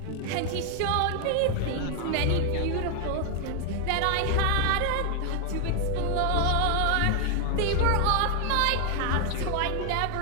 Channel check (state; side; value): different; both; correlation 0.00